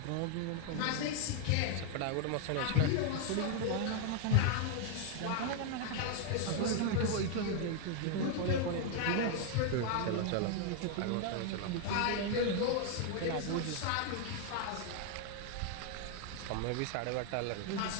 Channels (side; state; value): both; different; correlation 0.00